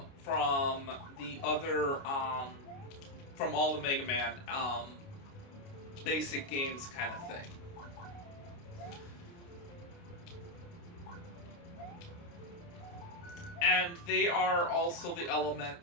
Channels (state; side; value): late; right; 29 ms